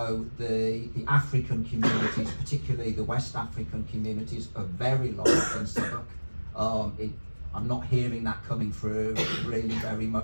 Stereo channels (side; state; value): both; inverted; correlation -1.00